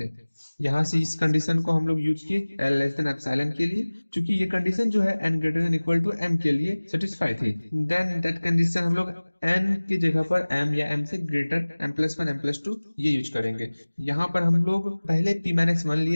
यहाँ से इस कंडीशन को हम लोग यूज किए एल लेस देन एप्सिलॉन के लिए, क्योंकि ये कंडीशन जो है n greater than equal to m के लिए सेटिस्फाई थी। देन दैट कंडीशन हम लोग एन की जगह पर एम या एम से ग्रेटर m+1 m+2 ये यूज करेंगे। यहाँ पर हम लोग पहले p-1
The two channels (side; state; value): both; inverted; correlation -1.00